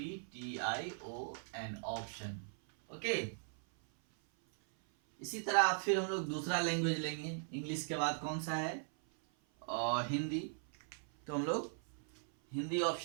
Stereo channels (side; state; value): left; silent; 52 dB below the other